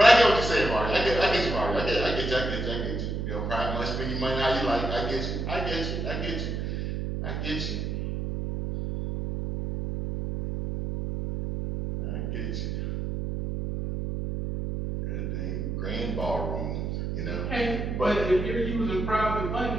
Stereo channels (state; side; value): noise; right; hum, 2 dB below the sound